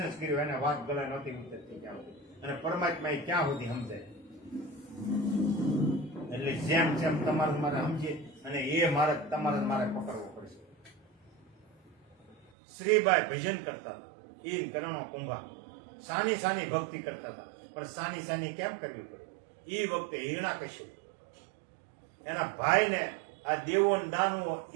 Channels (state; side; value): drops out; left; at 12.5 s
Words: જ કર્યો, એને વાત ગળે નહોતી ઉતરતી ક્યાં સુધી. અને પરમાત્મા ક્યાં સુધી સમજાય. એટલે જેમ તમારે મારે સમજીએ અને એ માર્ગ તમારે મારે પકડવો પડશે. શ્રીબાઈ ભજન કરતા હતા, ઈન કરણો કુંભા સાની ભક્તિ કરતા હતા. પણ સાની કેમ કરવી પડે? એ વખતે હિરણાકશ્યપ એના ભાઈને આ દેવો દાનવો